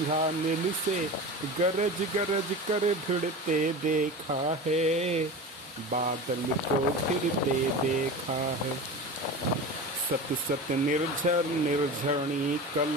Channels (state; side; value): normal; both; correlation 0.30